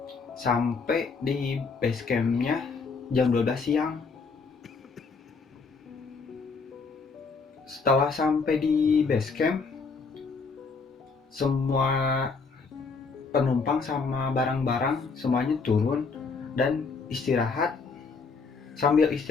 sampai di base campnya jam 12 siang. Setelah sampai di base camp, semua penumpang sama barang-barang semuanya turun dan istirahat. Sambil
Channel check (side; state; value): right; quieter; 4.7 dB